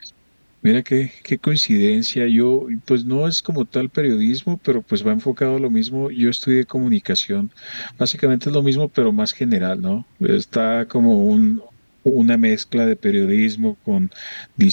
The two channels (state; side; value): inverted; both; correlation -1.00